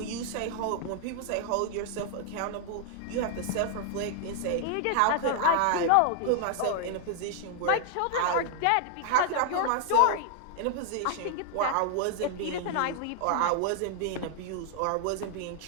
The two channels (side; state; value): both; different; correlation 0.00